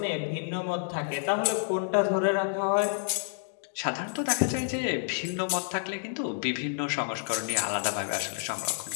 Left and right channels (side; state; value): right; silent; digital silence